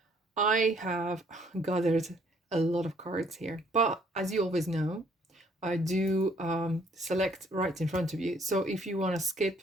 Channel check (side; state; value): both; normal; correlation 0.63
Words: I have gathered a lot of cards here, but as you always know, I do select right in front of you. So if you want to